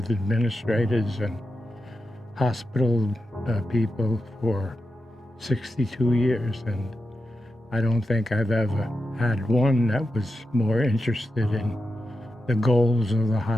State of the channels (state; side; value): normal; both; correlation 0.89